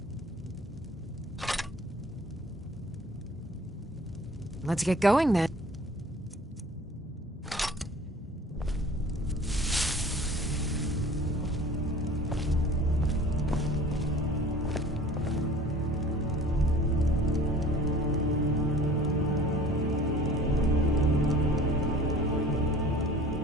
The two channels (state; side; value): normal; both; correlation 0.47